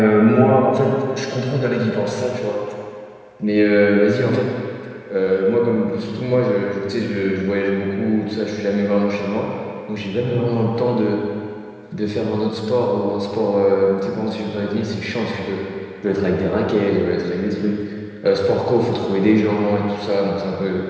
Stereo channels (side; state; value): both; identical; correlation 1.00